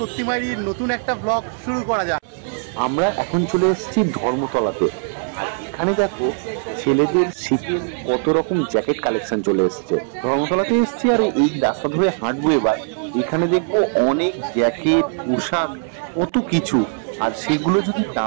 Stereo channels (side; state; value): left; silent; 64 dB below the other